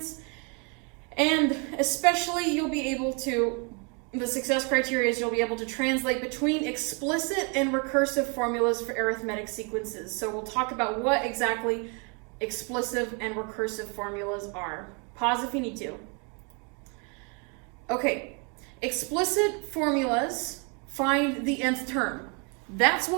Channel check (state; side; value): quieter; left; 34.7 dB